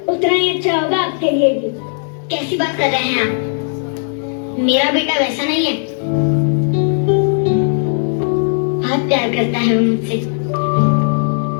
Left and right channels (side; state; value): right; silent; 61 dB below the other